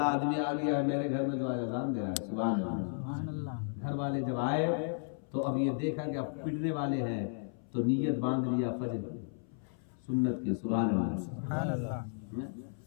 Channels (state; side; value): silent; right; 55 dB below the other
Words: آدمی آ گیا ہے میرے گھر میں جو آج اذان دے رہا ہے. سبحان اللہ. گھر والے جب آئے تو اب یہ دیکھا کہ اب پڑنے والے ہیں، تو نیت باندھ لیا فجر کی سنت کے. سبحان اللہ.